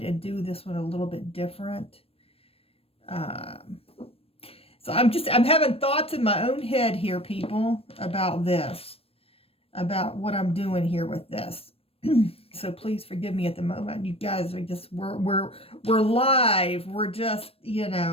and do this one a little bit different. So I'm having thoughts in my own head here, people, about this, about what I'm doing here with this. So please forgive me at the moment. You guys are just, we're live. We're just, you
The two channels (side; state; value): right; late; 0.28 ms